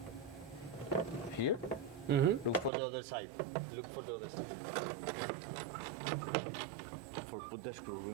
here. Look for the other side. Look for the other side. For put the screw.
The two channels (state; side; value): drops out; left; at 2.7 s